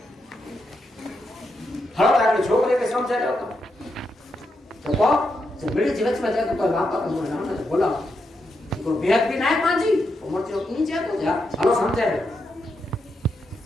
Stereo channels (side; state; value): both; normal; correlation 0.83